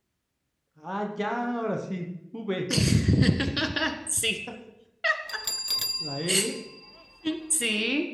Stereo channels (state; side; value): identical; both; correlation 1.00